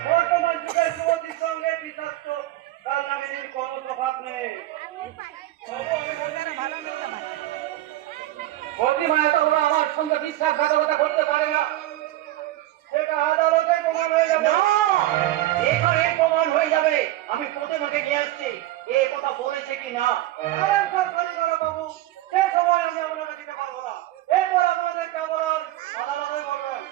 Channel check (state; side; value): quieter; left; 15.5 dB